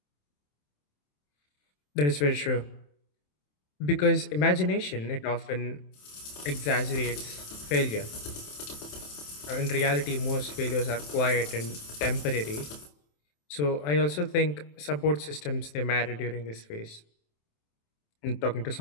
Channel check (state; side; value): late; right; 27 ms